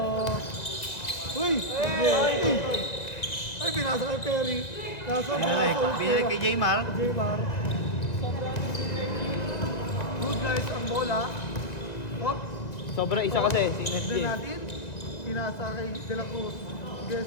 Uy! Ay, pinasa kay Perry. Kaso, pinasa ulit Binalik kay Jaymar. Jaymar. Good guys ang bola. Hop. Sobra isa kasi. Then natin, pinasa kay De La Cruz.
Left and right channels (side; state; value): right; late; 1.9 ms